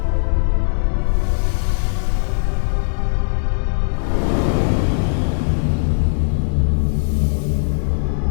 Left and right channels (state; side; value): silent; right; digital silence